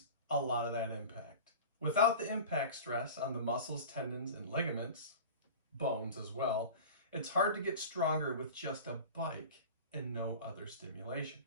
a lot of that impact. Without the impact stress on the muscles, tendons, and ligaments, bones as well, it's hard to get stronger with just a bike and no other stimulation.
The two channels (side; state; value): both; inverted; correlation -0.35